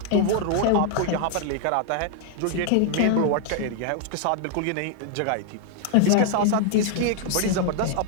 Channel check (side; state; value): both; different; correlation 0.00